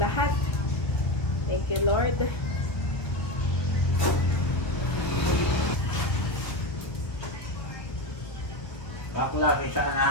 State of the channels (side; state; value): right; late; 1.4 ms